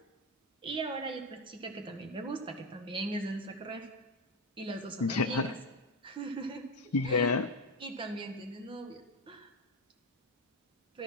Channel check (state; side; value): normal; both; correlation 0.12